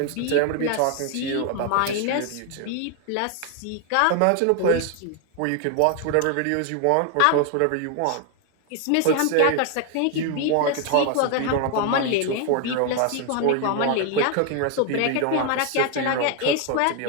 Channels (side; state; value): both; different; correlation 0.01